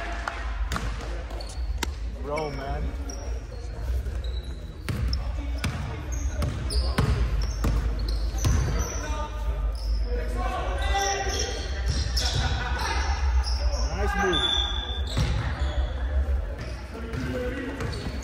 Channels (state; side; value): identical; both; correlation 1.00